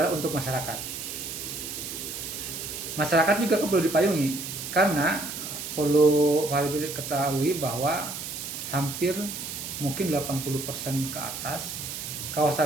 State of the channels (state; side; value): noise; right; hiss, 7 dB below the sound